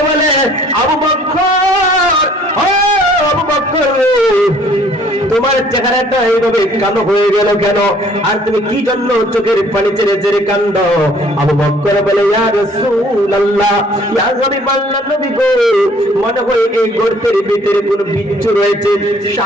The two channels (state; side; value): normal; both; correlation 0.58